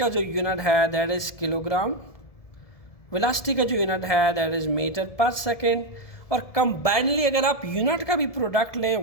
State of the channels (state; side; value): late; right; 1.7 ms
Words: जो यूनिट है दैट इज किलोग्राम, वेलोसिटी का जो यूनिट है that is meter per second, और कंबाइनली अगर आप यूनिट का भी प्रोडक्ट लें,